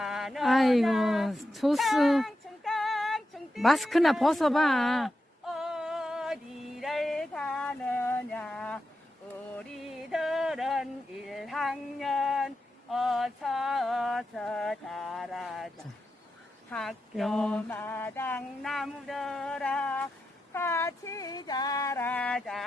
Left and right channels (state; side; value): normal; both; correlation 0.88